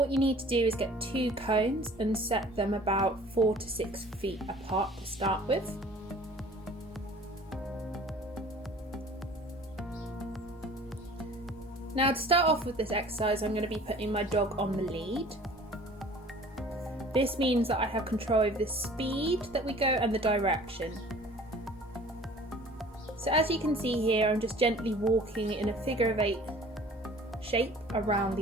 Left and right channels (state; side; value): normal; both; correlation 0.48